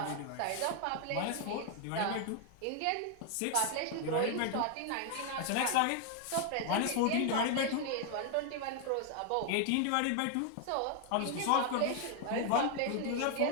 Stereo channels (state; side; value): different; both; correlation 0.00